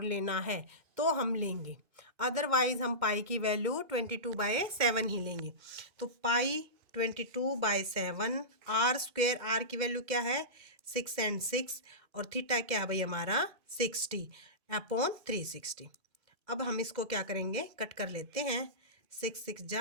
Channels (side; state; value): left; late; 2.0 ms